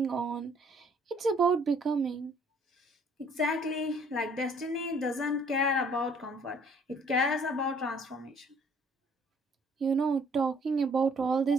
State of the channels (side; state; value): both; normal; correlation 0.59